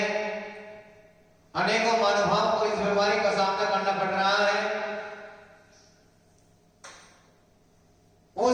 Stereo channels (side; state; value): both; identical; correlation 1.00